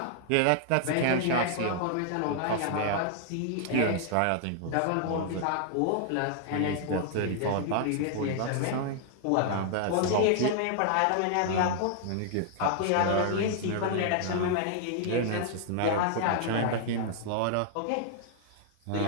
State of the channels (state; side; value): different; both; correlation 0.00